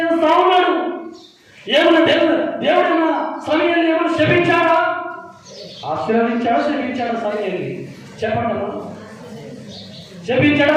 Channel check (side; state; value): both; identical; correlation 1.00